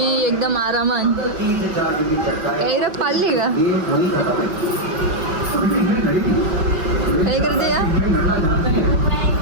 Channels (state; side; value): late; left; 5.4 ms